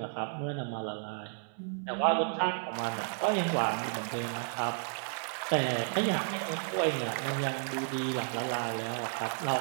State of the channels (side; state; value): left; silent; 56 dB below the other